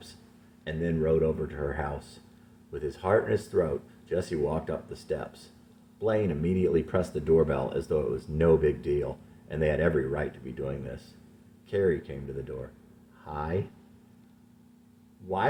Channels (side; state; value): both; identical; correlation 1.00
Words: and then rode over to her house. With his heart in his throat, Jesse walked up the steps. Blaine immediately pressed the doorbell as though it was no big deal, and they had every right to be doing this. Carrie came to the door. Hi.